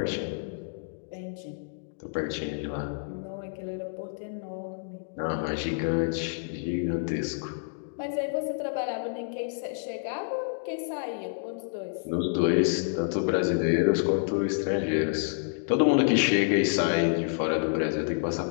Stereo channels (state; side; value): silent; right; digital silence